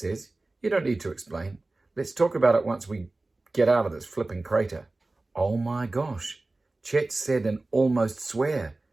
You don't need to explain. Let's talk about it once we get out of this flipping crater. Oh my gosh, Chet said and almost swear.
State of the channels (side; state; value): left; quieter; 3.1 dB